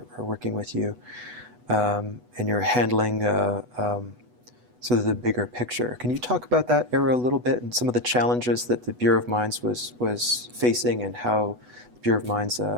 working with you, and you're handling sort of the bigger picture. Can you talk about that era a little bit and some of the challenges that the Bureau of Mines was facing and how the Bureau of Mines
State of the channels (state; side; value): late; left; 8.1 ms